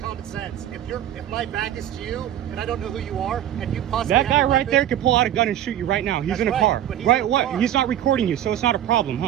common sense. If my back is to you and I don't know who you are, and you possibly That have guy a right weapon, there could pull out a gun and shoot you right now. He's That's in a right, car. but he's Right? in a What? car. He's not recording you, so it's not a problem,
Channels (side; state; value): left; quieter; 11.5 dB